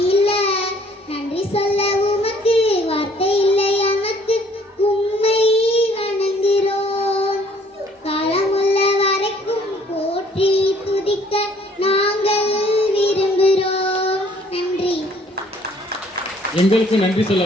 இல்ல. நன்றி சொல்ல உமக்கு வார்த்தை இல்லை, எனக்கு உம்மை வணங்குகிறோம். காலமுள்ள வரைக்கும் போற்றி துதிக்க நாங்கள் விரும்புகிறோம். நன்றி. எங்களுக்கு நன்றி சொல்ல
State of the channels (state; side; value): normal; both; correlation 0.59